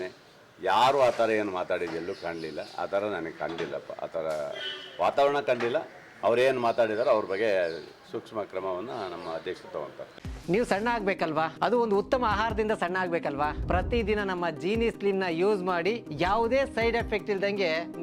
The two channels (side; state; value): both; identical; correlation 1.00